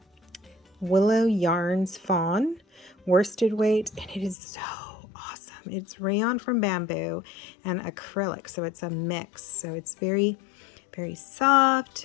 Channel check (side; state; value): right; drops out; at 4.4 s